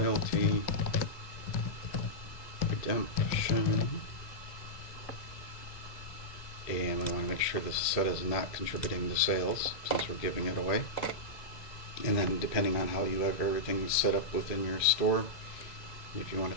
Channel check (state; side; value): late; right; 2.0 ms